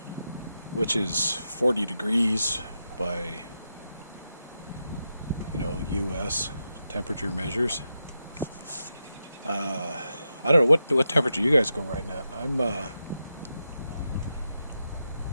Which is 40 degrees by US temperature measures. I don't know what temperature you guys go riding at.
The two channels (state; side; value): inverted; both; correlation -0.87